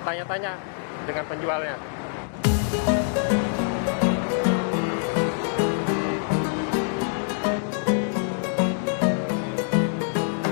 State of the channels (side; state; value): right; silent; digital silence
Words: tanya-tanya dengan penjualnya.